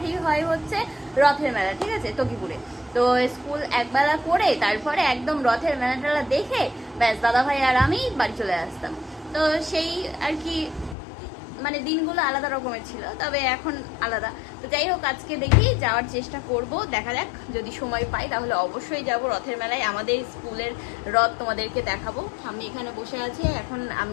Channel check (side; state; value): right; drops out; at 11.0 s